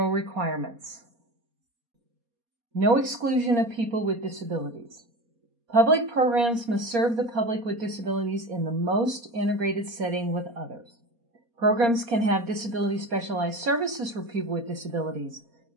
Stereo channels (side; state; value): left; late; 4.2 ms